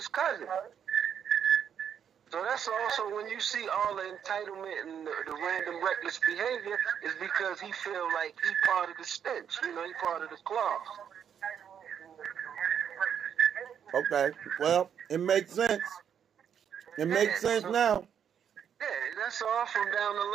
cousin. So that's also when you see all the entitlement and the random reckless behavior is because he feel like he part of the stench. He part of the cloth. Okay. Well, it makes sense. It makes sense now. Yeah, that's all from down the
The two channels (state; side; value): quieter; left; 8.3 dB